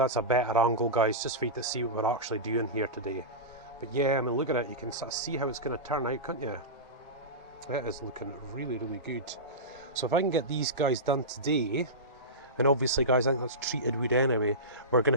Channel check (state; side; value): normal; both; correlation -0.17